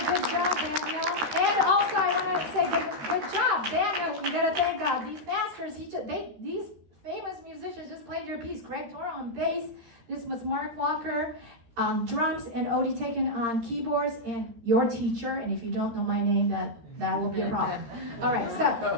good job, Daniel. And also, I want to say good job, Daniel. You gotta thank God. These masters, these famous musicians just played your piece. Greg Toro on bass. This was Mark Walker on drums and Odie Teken on keyboards, and your teacher. And if you don't know my name, that will be a problem. All right, so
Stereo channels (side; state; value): left; late; 13 ms